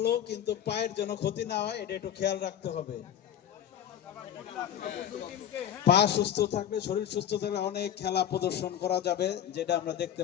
কিন্তু পায়ের যেন ক্ষতি না হয়, এটা একটু খেয়াল রাখতে হবে। পা সুস্থ থাকলে, শরীর সুস্থ থাকলে অনেক খেলা প্রদর্শন করা যাবে, যেটা আমরা দেখতে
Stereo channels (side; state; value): right; quieter; 10.0 dB